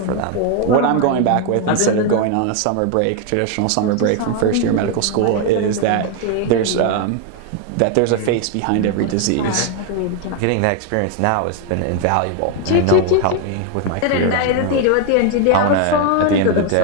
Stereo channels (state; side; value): different; both; correlation 0.01